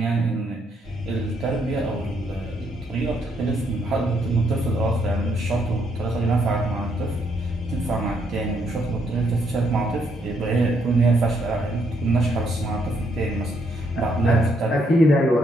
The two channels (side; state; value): both; normal; correlation 0.73